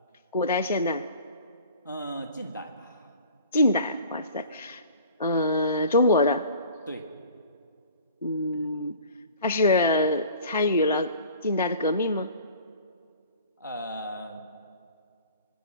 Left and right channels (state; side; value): inverted; both; correlation -0.46